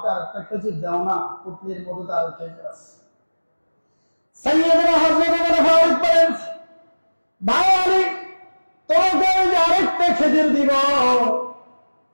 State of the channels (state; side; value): inverted; both; correlation -1.00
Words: আরেকটা খেজুর দাও না, পুটলির মধ্যে তো আরো খেজুর আছে। সাইয়েদনা হযরত ওমর ফারুক বলেন, ভাই আলী, তোমাকে আমি আরেকটা খেজুর দিব,